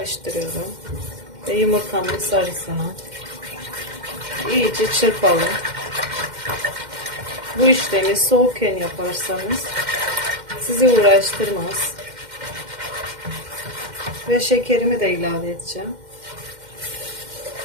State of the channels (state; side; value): late; left; 2.1 ms